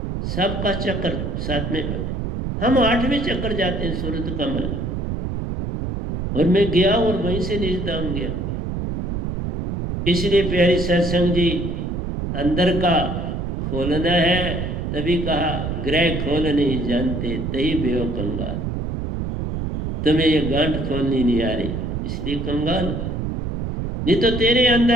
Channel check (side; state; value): right; noise; rumble, 3 dB below the sound